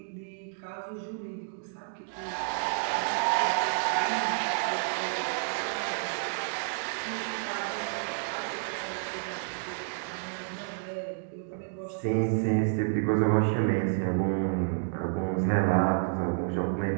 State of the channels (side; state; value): left; silent; digital silence